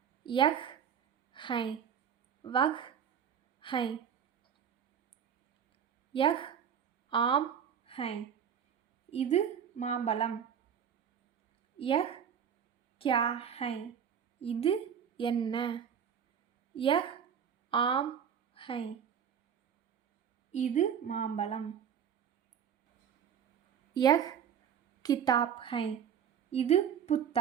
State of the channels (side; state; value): left; quieter; 8.2 dB